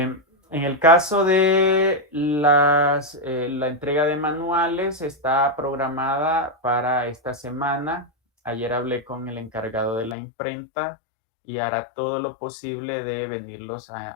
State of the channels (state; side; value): drops out; right; at 10.2 s